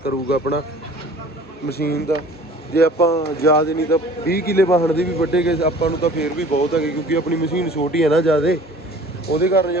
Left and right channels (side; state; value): both; normal; correlation 0.47